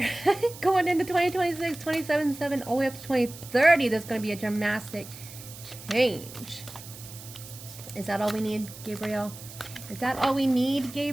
going into 2026, 27/7, all the way up to 2030, there's going to be a dramatic change. Is that all we need, Gabriel? Is that all we need,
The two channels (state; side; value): noise; right; hiss, 15 dB below the sound